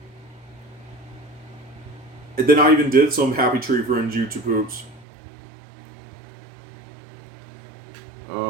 And then I even did some Happy Tree Friends YouTube Poops.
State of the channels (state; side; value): drops out; left; at 5.1 s